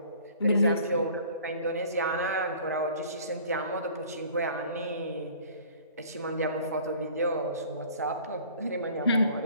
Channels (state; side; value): inverted; both; correlation -0.50